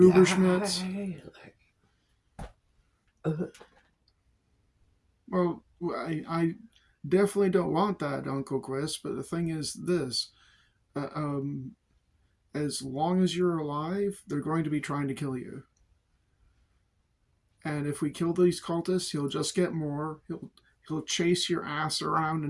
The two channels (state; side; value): identical; both; correlation 1.00